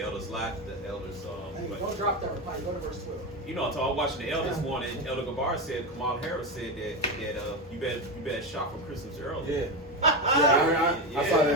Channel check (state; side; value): normal; both; correlation 0.15